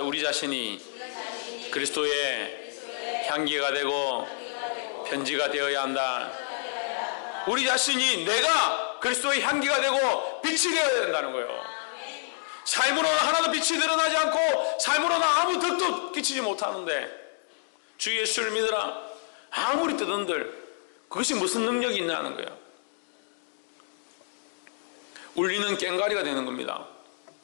우리 자신이 그리스도의 향기가 되고 편지가 되어야 한다. 우리 자신이 내가 그리스도의 향기가 되고 빛이 되어야 된다는 거예요. 삶으로는 하나도 빛이 드러나지 않고 삶으로는 아무 덕도 끼치지 못하는데 주 예수를 믿으라 아무리 뜨던들 그것이 무슨 능력이 있냐는 거예요. 울리는 꽹과리가 되는 겁니다.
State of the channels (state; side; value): silent; right; digital silence